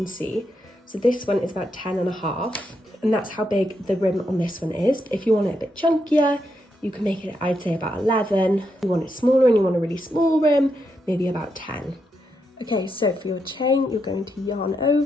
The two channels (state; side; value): normal; both; correlation 0.82